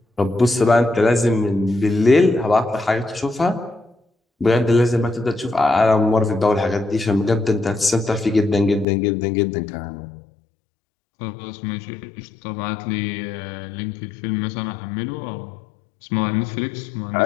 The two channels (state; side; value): drops out; right; at 8.8 s